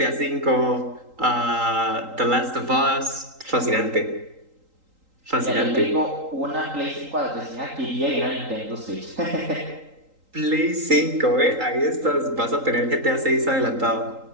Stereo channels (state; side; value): late; left; 3.8 ms